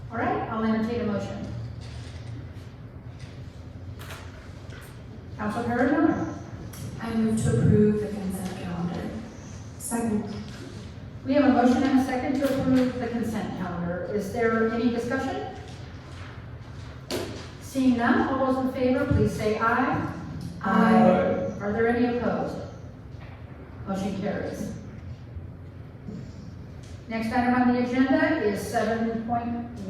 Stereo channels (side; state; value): both; identical; correlation 1.00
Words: All right, I'll entertain a motion. Councilor Perrone. I move to approve the consent calendar. Second. We have a motion and a second to approve the consent calendar. Is there any discussion? Seeing none, all those in favor, please say aye. Aye. Are there any opposed? Motion carries. Next item on the agenda is